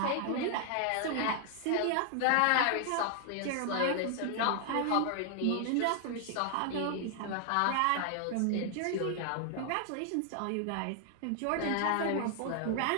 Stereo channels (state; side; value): different; both; correlation 0.00